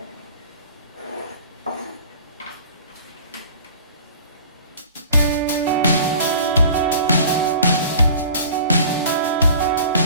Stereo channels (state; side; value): inverted; both; correlation -0.45